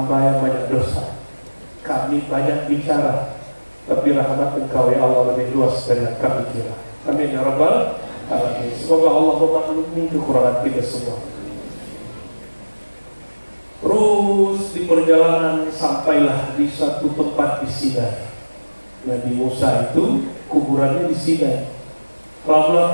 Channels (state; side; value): inverted; both; correlation -1.00